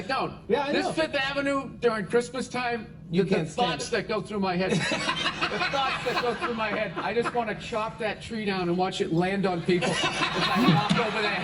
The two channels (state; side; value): identical; both; correlation 1.00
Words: don't. Yeah, I know. This Fifth Avenue during Christmas time, You the can't stand thoughts that go through my head. I just want to chop that tree down and watch it land on people as I walk over their